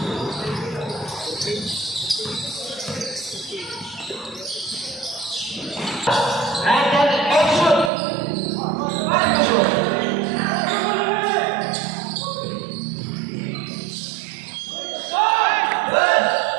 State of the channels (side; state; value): left; drops out; at 7.9 s